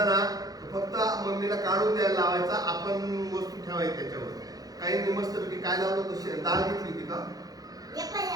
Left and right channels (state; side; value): late; left; 0.18 ms